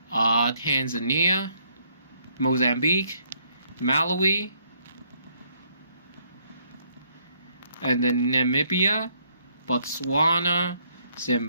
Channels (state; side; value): inverted; both; correlation -0.70